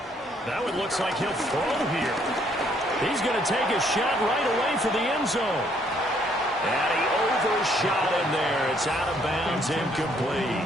Now it looks like he'll throw here. He's going to take a shot right away for the end zone. And he overshot him there. It's out of bounds, incomplete.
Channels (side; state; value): both; normal; correlation 0.67